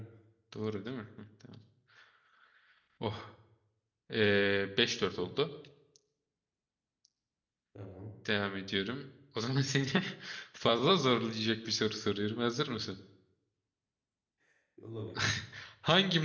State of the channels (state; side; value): identical; both; correlation 1.00